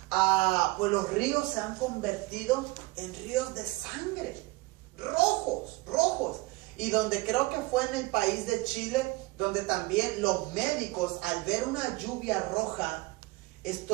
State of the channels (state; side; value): quieter; left; 22.4 dB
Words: pues los ríos se han convertido en ríos de sangre, rojos. Y donde creo que fue en el país de Chile, donde también los médicos, al ver una lluvia roja,